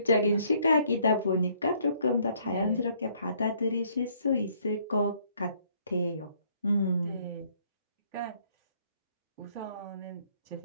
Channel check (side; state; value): both; inverted; correlation -0.65